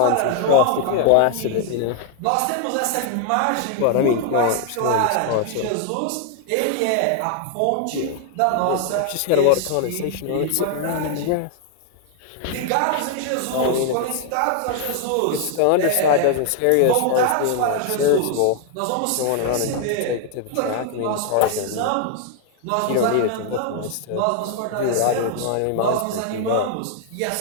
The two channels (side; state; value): both; different; correlation 0.00